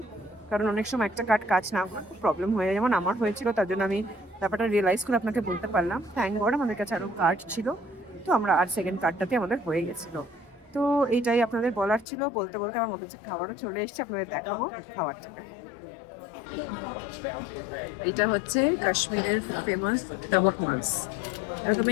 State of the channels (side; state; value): right; drops out; at 12.1 s